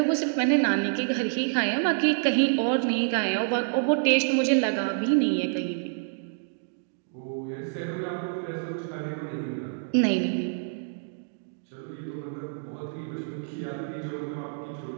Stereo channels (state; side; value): silent; left; digital silence